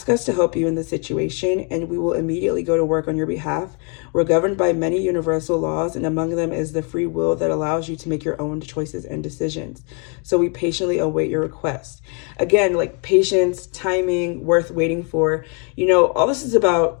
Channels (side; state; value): right; quieter; 36.6 dB